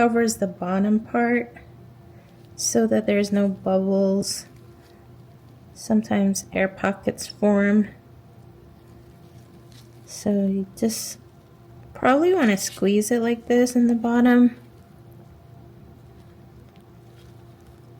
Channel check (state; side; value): identical; both; correlation 1.00